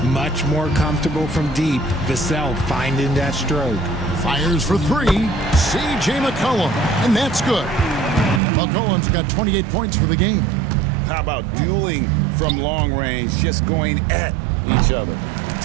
Much more comfortable from deep. Vassell finding that stroke. Fires for 3. C.J. McCollum. And that's good. McCollum's got 28 points for the game. How about dueling from long range, just going at each other?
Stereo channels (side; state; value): left; drops out; at 8.4 s